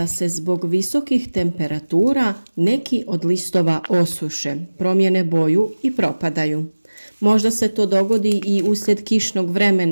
se zbog visokih temperatura neki od listova osuše, promijene boju i propadaju. Možda se to dogodi i uslijed kišnog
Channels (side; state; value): both; inverted; correlation -1.00